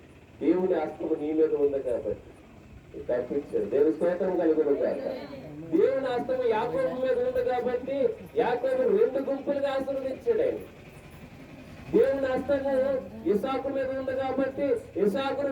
దేవుని హస్తము నీ మీద ఉంది కాబట్టి తప్పించాడు. దేవుని స్తోత్రం కలుగును కాక. దేవుని హస్తము యాకోబు మీద ఉంది కాబట్టి యాకోబు 2 గుంపులుగా ఆశీర్వదించాడు ఆయన. దేవుని హస్తము ఇసాకు మీద ఉంది కాబట్టి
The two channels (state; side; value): identical; both; correlation 1.00